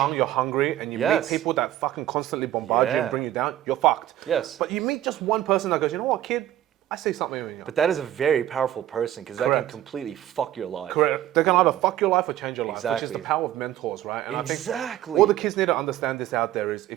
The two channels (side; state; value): left; quieter; 13.0 dB